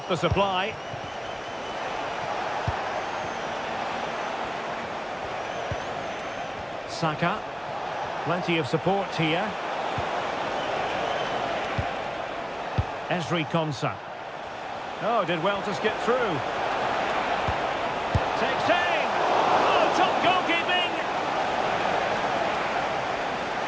the supply. Saka. Plenty of support here. Fc26. Oh, did well to skip through. Takes aim. Oh, top goalkeeping.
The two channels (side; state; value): both; identical; correlation 1.00